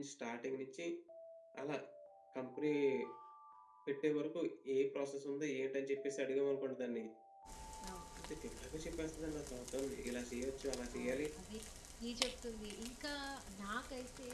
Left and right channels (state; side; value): identical; both; correlation 1.00